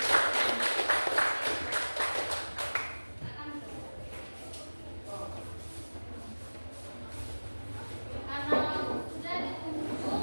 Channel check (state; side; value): inverted; both; correlation -1.00